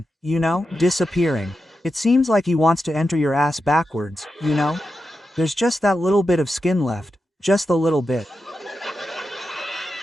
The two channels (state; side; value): normal; both; correlation 0.89